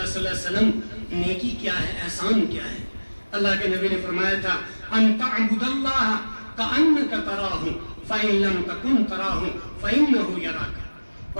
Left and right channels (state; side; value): inverted; both; correlation -1.00